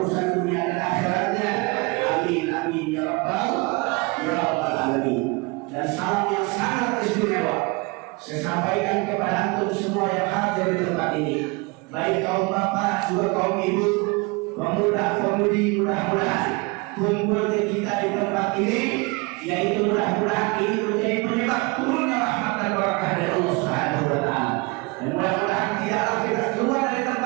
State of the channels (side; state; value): left; quieter; 27.2 dB